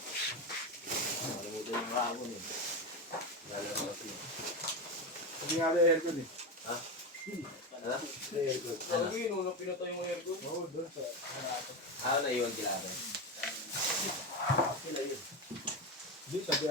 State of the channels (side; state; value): both; normal; correlation 0.16